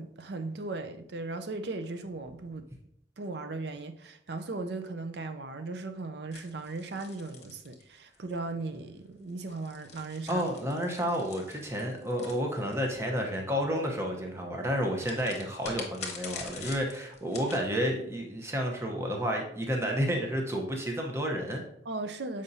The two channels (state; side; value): normal; both; correlation 0.49